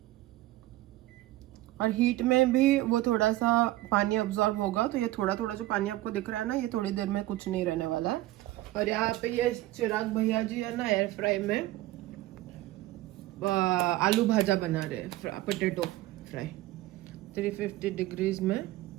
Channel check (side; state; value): left; quieter; 16.7 dB